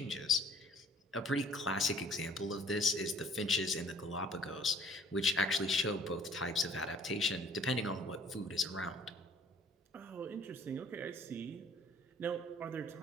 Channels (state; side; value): normal; both; correlation 0.56